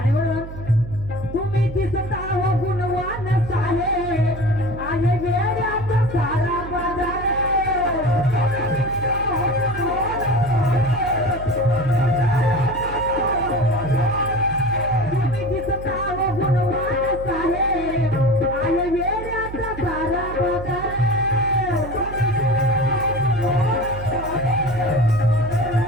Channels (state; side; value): noise; right; hum, 11 dB below the sound